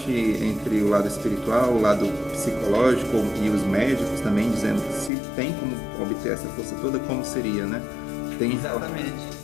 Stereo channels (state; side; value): drops out; right; at 5.1 s